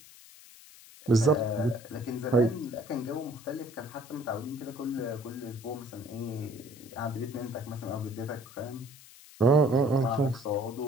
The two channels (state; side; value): noise; left; hiss, 20 dB below the sound